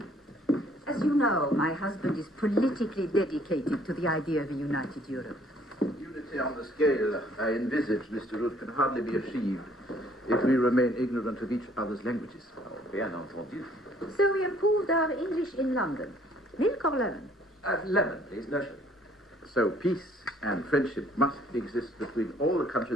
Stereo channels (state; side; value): normal; both; correlation 0.61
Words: As you know, my husband is politically dedicated to the idea of a united Europe. Unity on the scale I envisage, Mr. Root, can hardly be achieved if we remain ignorant of each other's languages. Oh, bien entendu. So we improved our English in London. Milk or lemon? Lemon, please, no sugar. So peace and friendship must exist between all the